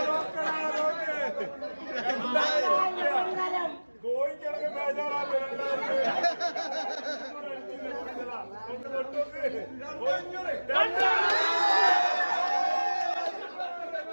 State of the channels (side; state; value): both; inverted; correlation -1.00